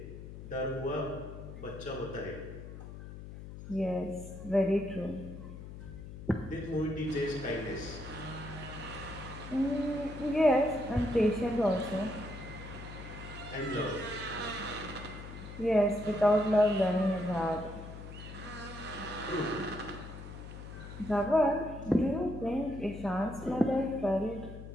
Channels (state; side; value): noise; left; hum, 12 dB below the sound